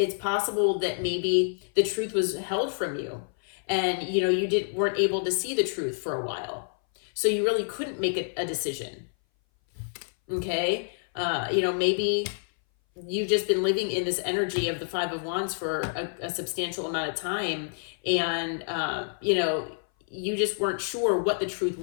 possible that maybe the truth was held from you, and you weren't able to see the truth for a while, so you really couldn't make a decision. Okay, maybe you've just been living in this energy of the Five of Wands for a substantial amount of time, and you just weren't sure what the truth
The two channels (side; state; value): right; silent; 58 dB below the other